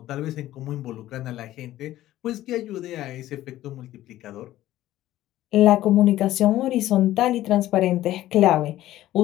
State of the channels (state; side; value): quieter; right; 14.4 dB